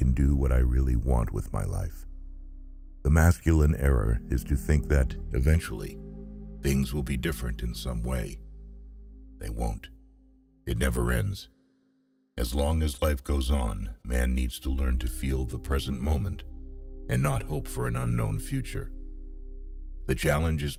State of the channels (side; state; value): both; identical; correlation 1.00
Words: do what I really want with my life. The masculine error is to think that, eventually, things will be different in some way. They won't. It never ends. As long as life goes on, man needs to learn to feel the present moment and not hope for an unknown future. The challenge is